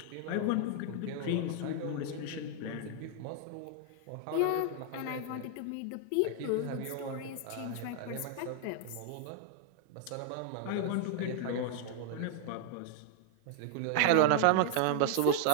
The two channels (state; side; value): different; both; correlation -0.01